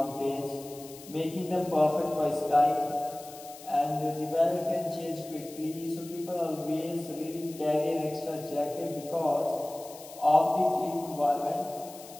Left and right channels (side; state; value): left; noise; hiss, 17 dB below the sound